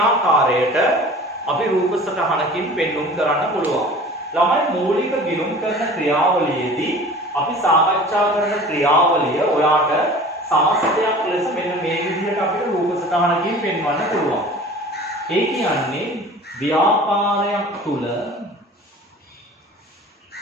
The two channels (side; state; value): both; normal; correlation 0.43